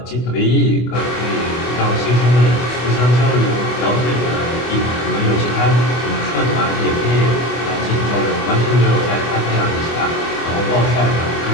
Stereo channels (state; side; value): late; right; 24 ms